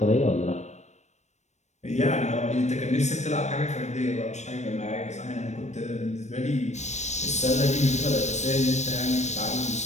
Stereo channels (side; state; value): right; late; 0.34 ms